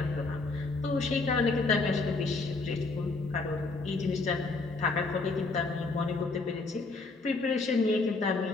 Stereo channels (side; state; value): right; quieter; 3.6 dB